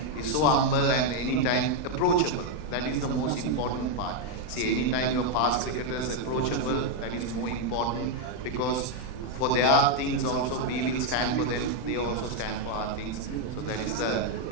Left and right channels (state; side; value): late; right; 40 ms